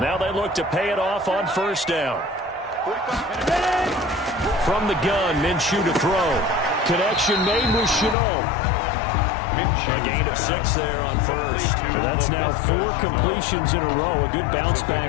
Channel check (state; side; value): drops out; right; at 8.2 s